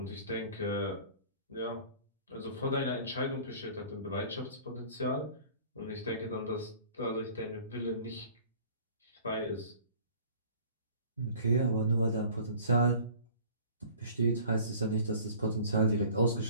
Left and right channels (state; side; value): inverted; both; correlation -0.48